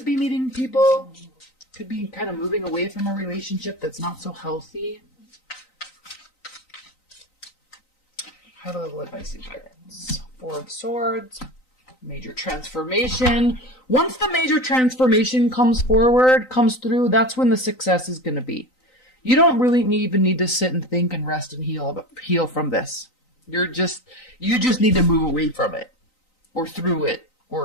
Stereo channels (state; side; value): late; right; 3.9 ms